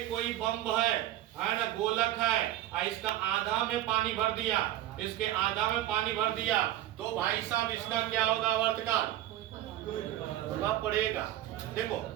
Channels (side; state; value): left; quieter; 13.7 dB